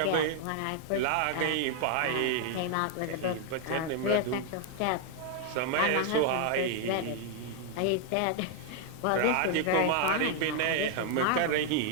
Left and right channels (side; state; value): both; different; correlation 0.00